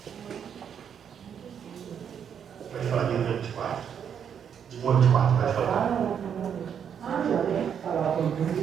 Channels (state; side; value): quieter; left; 8.0 dB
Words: Pode falar de 1 a 24. De 1 a 24, pode falar.